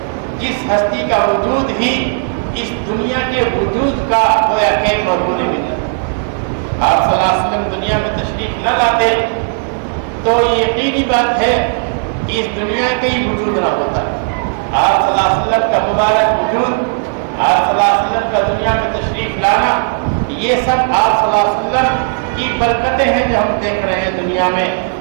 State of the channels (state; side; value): silent; left; 70 dB below the other